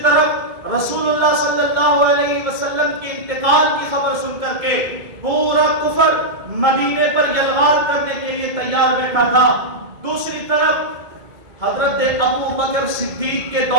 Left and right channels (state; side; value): late; left; 2.3 ms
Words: طرف رسول اللہ صلی اللہ علیہ وسلم کے انتقال کی خبر سن کر کے پورا کفر مدینے پر یلغار کرنے کے لیے تیار بیٹھا تھا۔ دوسری طرف حضرت ابو بکر صدیق کے